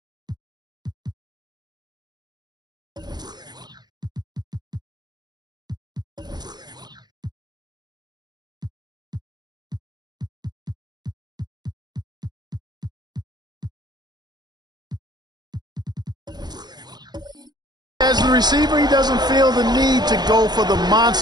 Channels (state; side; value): late; left; 0.20 ms